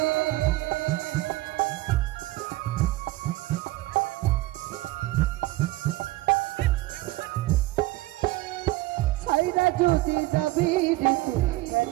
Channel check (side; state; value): left; quieter; 18.7 dB